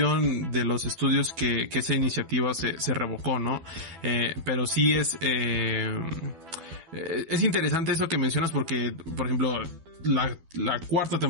de los estudios que esa iniciativa se revocó, ¿no? Pero sí es interesante eso que mencionas porque, por ejemplo, la cuarta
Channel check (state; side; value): late; left; 12 ms